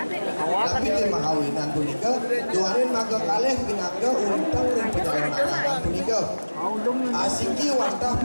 tapi di mahawinan punika tuanin maga kaleh pinaga untang dan perjalanan punika asiki wantah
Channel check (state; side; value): inverted; both; correlation -1.00